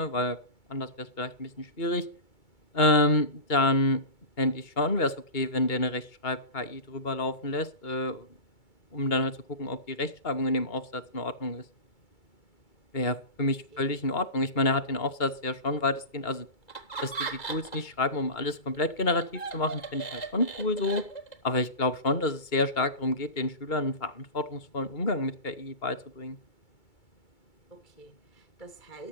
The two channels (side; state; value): right; late; 2.3 ms